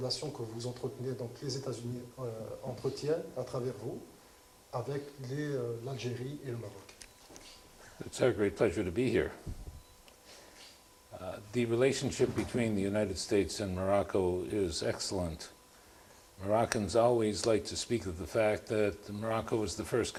que vous entretenez, donc les États-Unis entretiennent à travers vous avec l'Algérie et le Maroc? It's a great pleasure to be here. The relationship between the United States and Morocco is excellent. Moroccans always like to speak of the fact that Morocco was the first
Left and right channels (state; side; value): identical; both; correlation 1.00